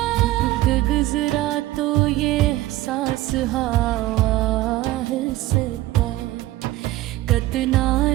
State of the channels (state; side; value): quieter; left; 16.5 dB